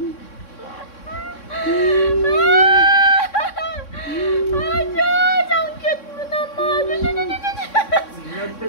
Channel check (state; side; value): late; right; 3.6 ms